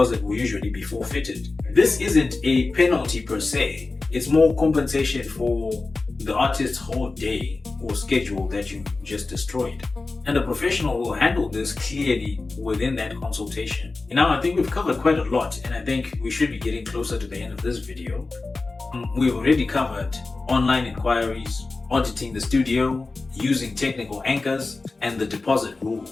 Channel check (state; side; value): quieter; right; 3.6 dB